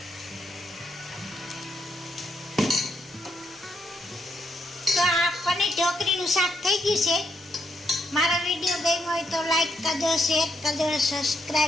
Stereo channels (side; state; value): both; normal; correlation 0.78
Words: તો આ પનીર ઢોકળીનું શાક થઈ ગયું છે. મારો વિડીયો ગમ્યો હોય તો લાઈક કરજો, શેર કરજો,